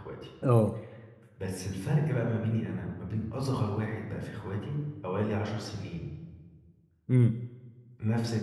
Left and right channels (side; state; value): both; identical; correlation 1.00